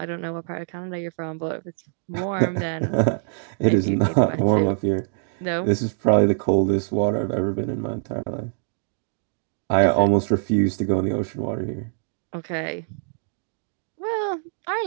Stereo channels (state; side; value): silent; left; digital silence